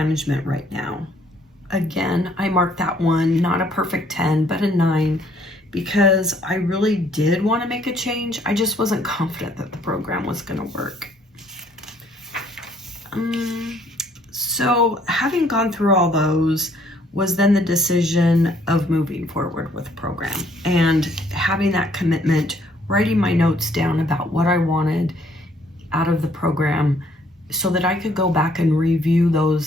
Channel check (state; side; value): normal; both; correlation 0.64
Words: right now? Again, I marked that one, not a perfect 10, but a 9. Because I really did want to make a change. I just wasn't confident that the program was going to work. So having gone through all those was then the decision of moving forward with the program and having that commitment, writing my notes down about what I wanted out of the program so that I could go back and review